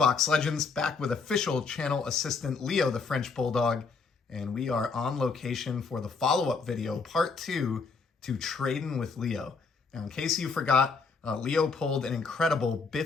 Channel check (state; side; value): quieter; right; 4.8 dB